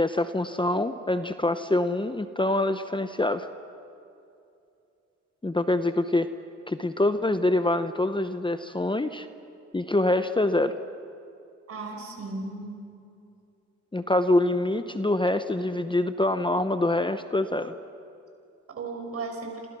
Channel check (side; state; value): both; normal; correlation 0.69